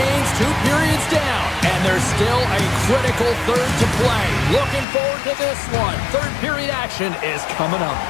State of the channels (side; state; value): right; drops out; at 4.9 s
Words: 2 periods down. And there's still a critical third to play. Looking forward to this one. Third period action is coming up.